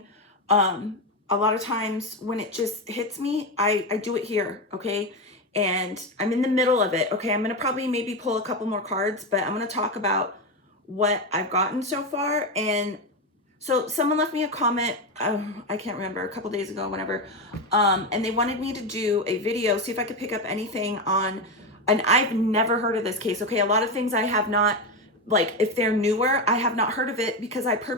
a lot of times when it just hits me, I do it here, okay? And I'm in the middle of it, okay? I'm gonna probably maybe pull a couple more cards, but I'm gonna talk about what I've gotten so far. And so someone left me a comment, I can't remember, a couple days ago, whenever, and they wanted me to do a video, see if I could pick up anything on, and I've never heard of this case, okay? A lot of things I have not, like if they're newer, I have not heard of it because I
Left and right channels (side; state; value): both; normal; correlation 0.13